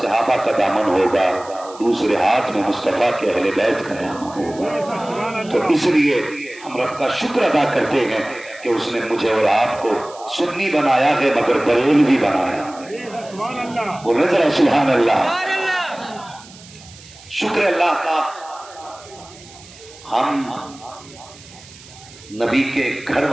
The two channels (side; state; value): right; noise; hiss, 21 dB below the sound